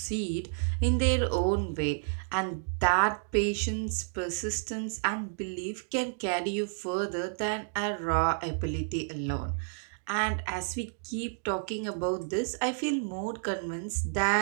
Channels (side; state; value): left; silent; digital silence